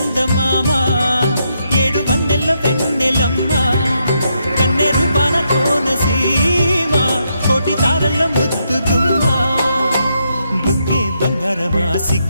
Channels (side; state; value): both; inverted; correlation -0.79